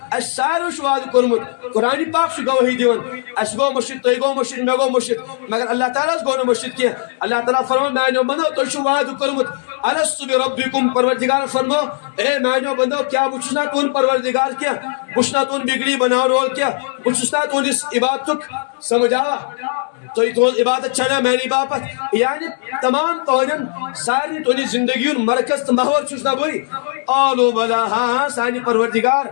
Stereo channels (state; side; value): silent; right; digital silence